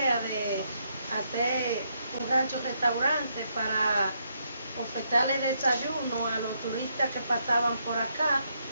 de hacer un rancho-restaurante para ofertarle desayuno a los turistas que pasaban por acá.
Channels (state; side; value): inverted; both; correlation -0.76